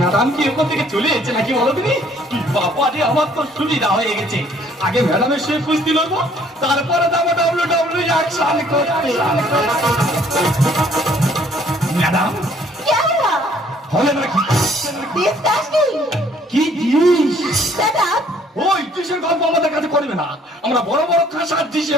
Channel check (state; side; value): normal; both; correlation 0.60